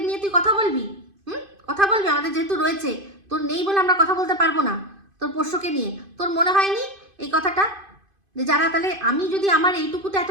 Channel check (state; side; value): late; left; 2.5 ms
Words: নিয়ে তুই কথা বলবি, কথা বলবি। আমাদের যেহেতু রয়েছে, তোর নেই বলে আমরা কথা বলতে পারবো না তোর পোষ্যকে নিয়ে। তোর মনে হয়নি এই কথাটা যে যারা, তাহলে আমি যদি আমার এইটুকুতে এত